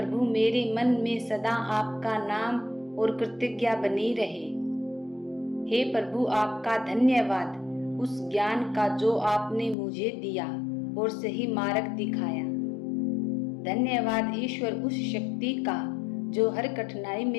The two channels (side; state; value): right; drops out; at 9.8 s